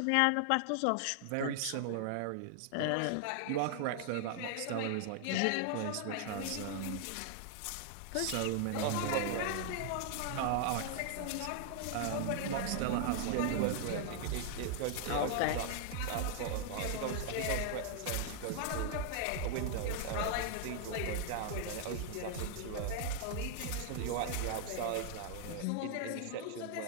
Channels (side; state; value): both; different; correlation 0.00